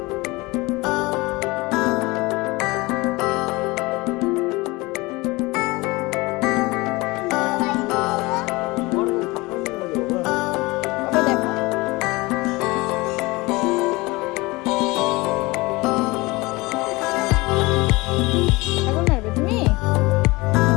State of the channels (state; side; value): quieter; right; 22.9 dB